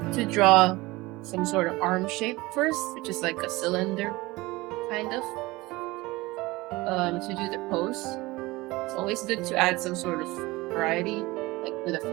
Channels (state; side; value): quieter; left; 21.1 dB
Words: to draw some sort of arm shape first, which is like a cylinder, kind of. To do the pose. It's always good to add some sort of variety, like with the